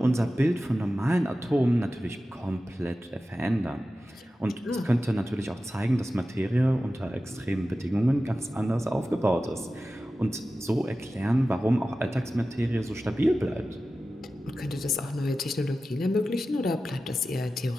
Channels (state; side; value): normal; both; correlation 0.94